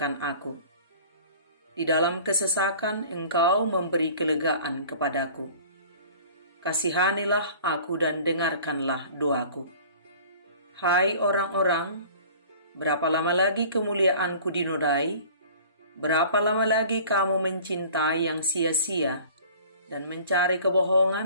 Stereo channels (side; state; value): both; inverted; correlation -0.46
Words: aku. Di dalam kesesakan Engkau memberi kelegaan kepadaku. Kasihanilah aku dan dengarkanlah doaku. Hai orang-orang, berapa lama lagi kemuliaanku dinodai? Berapa lama lagi kamu mencintai yang sia-sia dan mencari